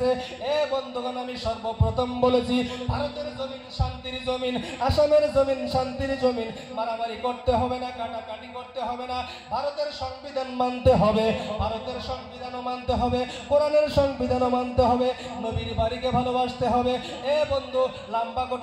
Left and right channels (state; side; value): identical; both; correlation 1.00